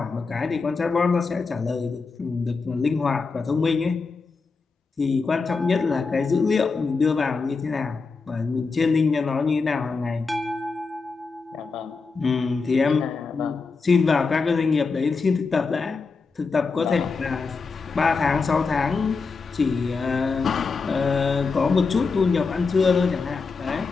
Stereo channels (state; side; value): quieter; right; 4.6 dB